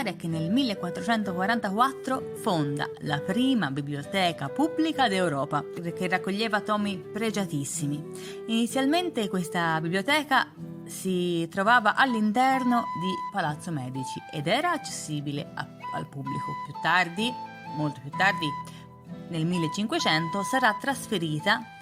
è che nel 1444 fonda la prima biblioteca pubblica d'Europa, che raccoglieva tomi pregiatissimi. Inizialmente questa biblioteca si trovava all'interno di Palazzo Medici ed era accessibile al pubblico. Più tardi, molto più tardi, nel 1500, sarà trasferita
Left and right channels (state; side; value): identical; both; correlation 1.00